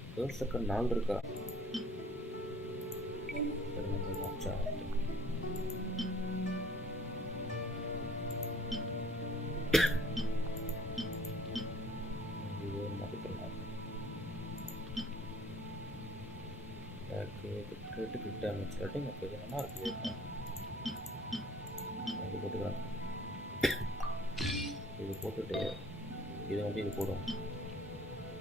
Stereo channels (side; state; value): both; normal; correlation 0.53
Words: தேர்ட் செகண்ட் 4 இருக்கா? வாட்சா கிரிட்டிக்கல் டேமேஜ் ரேட்டிங் ஓகே, இது நல்லா இருக்குது. இது போட்டுக்கலாம். இது போட்டுட்டு இது வந்து இது போடும்